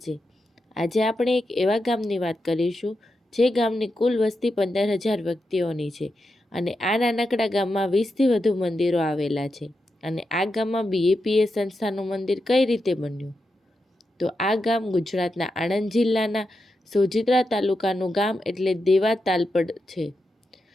છે। આજે આપણે એક એવા ગામની વાત કરીશું જે ગામની કુલ વસ્તી 15,000 વ્યક્તિઓની છે અને આ નાનકડા ગામમાં 20થી વધુ મંદિરો આવેલા છે। અને આ ગામમાં BAPS સંસ્થાનું મંદિર કઈ રીતે બન્યું? તો આ ગામ ગુજરાતના આણંદ જિલ્લાના સોજિત્રા તાલુકાનું ગામ એટલે દેવા તાલપડ છે।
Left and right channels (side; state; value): both; normal; correlation 0.87